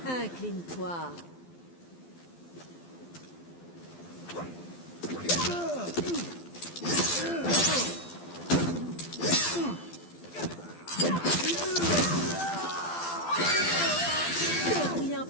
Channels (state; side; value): late; right; 12 ms